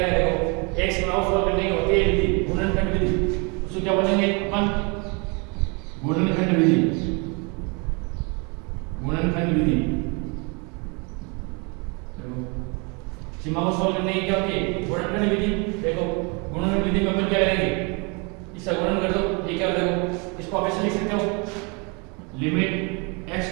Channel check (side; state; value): left; quieter; 31.8 dB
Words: करें, देखो एक सीमा को सॉल्व करने की होती है विधि, गुणनखंड विधि। उसको क्या बोलेंगे अपन, गुणनखंड विधि, गुणनखंड विधि। सीमा को सॉल्व करने की क्या होती है, गुणनखंड विधि। देखो गुणनखंड विधि में अपन क्या करेंगे, इसका गुणन कर दो, ये क्या हो, देखो इसको आप ऐसे लिख सकते हो, लिमिट x